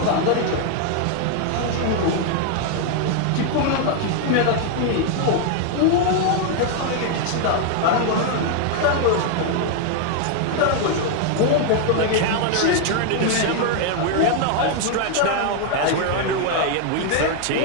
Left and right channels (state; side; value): different; both; correlation 0.00